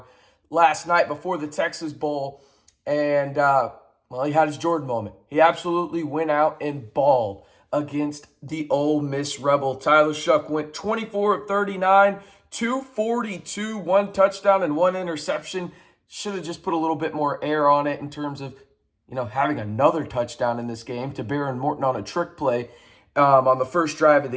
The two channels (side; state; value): both; identical; correlation 1.00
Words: last night before the Texas Bowl. And, he had his Jordan moment. He absolutely went out and balled against the Ole Miss Rebel. Tyler Shough went 24 of 39, 242, one touchdown and one interception. Should have just put a little bit more air on it in terms of, having another touchdown in this game to Behren Morton on a trick play on the first drive of